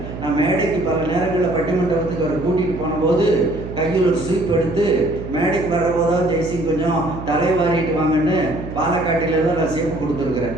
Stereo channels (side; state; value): right; noise; hum, 10 dB below the sound